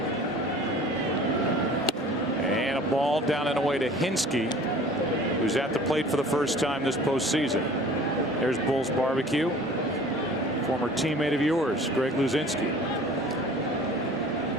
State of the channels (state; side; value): normal; both; correlation 0.46